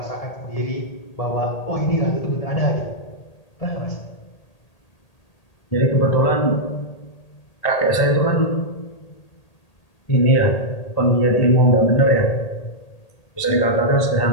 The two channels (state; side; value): late; right; 1.8 ms